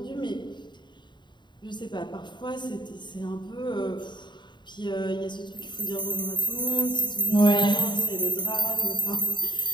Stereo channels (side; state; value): right; late; 0.22 ms